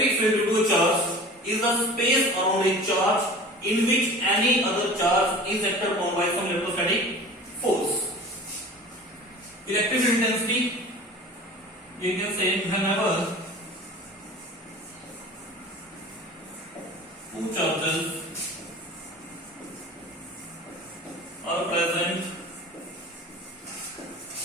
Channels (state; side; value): normal; both; correlation 0.40